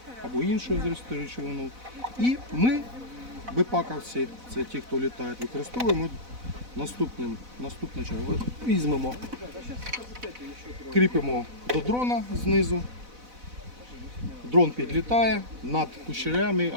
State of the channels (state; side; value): late; left; 4.0 ms